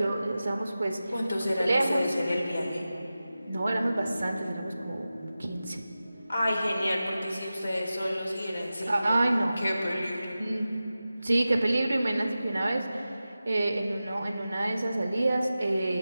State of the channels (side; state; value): both; inverted; correlation -0.94